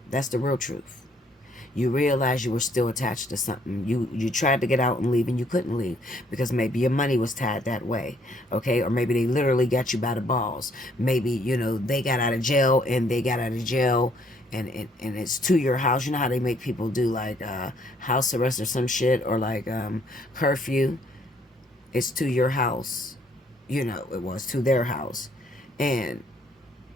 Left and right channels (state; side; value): normal; both; correlation 0.66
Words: That's the real truth. You realized you were still attached to something. You tried to get out and leave, and you couldn't leave because maybe your money was tied that way, okay? Or maybe they literally got you by the balls. Maybe, you know, they got out of jail, and it's to your house. You know how they make people do, like, house arrest or some shit, or like curfew? It's to your house. You know, it was to their house. And